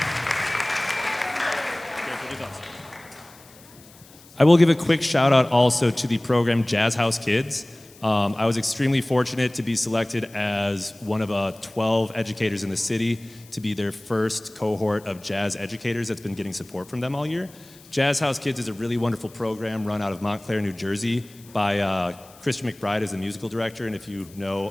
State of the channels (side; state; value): left; noise; hiss, 24 dB below the sound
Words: I will give a quick shout out also to the program Jazz House Kids. I was extremely fortunate to be selected as one of 12 educators in the city to be their first cohort of jazz educators that's been getting support from them all year. Jazz House Kids is a really wonderful program run out of Montclair, New Jersey by Christian McBride as the musical director. And if you know